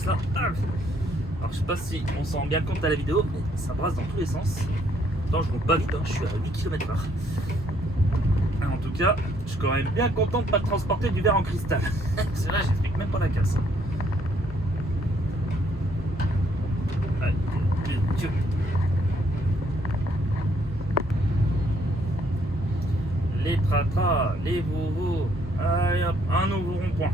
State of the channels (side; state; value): both; normal; correlation 0.68